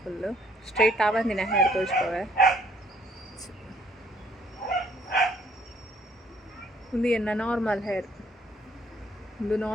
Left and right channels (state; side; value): normal; both; correlation 0.64